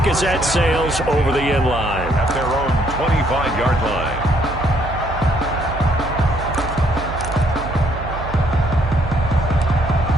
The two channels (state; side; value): noise; right; hum, 9 dB below the sound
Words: as that sails over the end line. At their own 25-yard line.